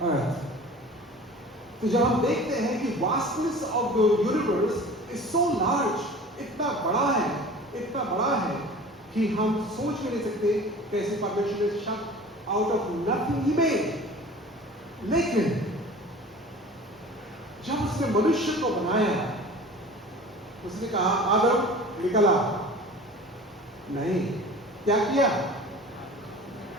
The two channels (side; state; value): both; normal; correlation 0.41